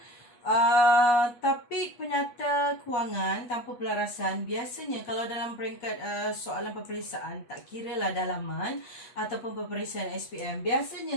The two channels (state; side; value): late; right; 8.3 ms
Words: Topik penyata kewangan tanpa pelarasan biasanya kalau dalam peringkat soalan peperiksaan, tak kira lah dalaman ataupun peperiksaan SPM, biasanya